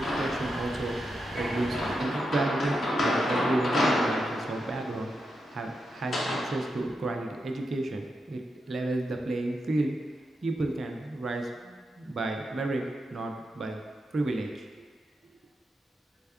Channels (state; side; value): normal; both; correlation 0.86